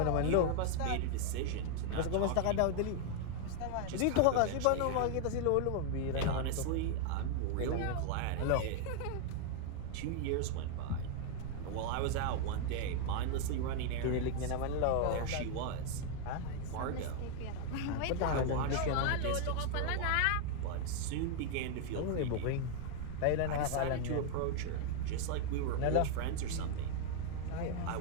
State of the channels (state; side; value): different; both; correlation 0.00